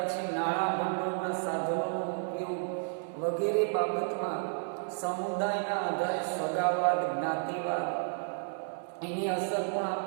નાણાં ભંડોળના સાધનોનો ઉપયોગ વગેરે બાબતમાં સમુદાયના આધારે સગાવાદ, જ્ઞાતિવાદ એની અસર પણ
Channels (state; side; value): silent; left; digital silence